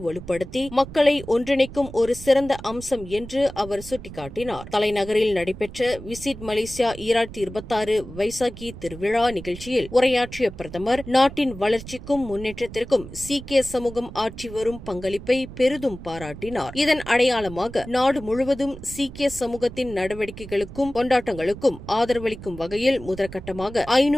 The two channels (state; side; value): noise; right; rumble, 14 dB below the sound